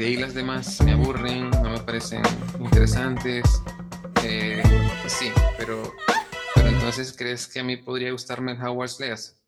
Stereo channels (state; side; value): identical; both; correlation 1.00